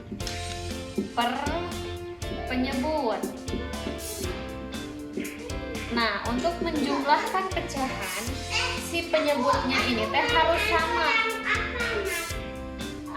per penyebut. Nah, untuk menjumlahkan pecahan, si penyebutnya ini teh harus sama.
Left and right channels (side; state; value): both; identical; correlation 1.00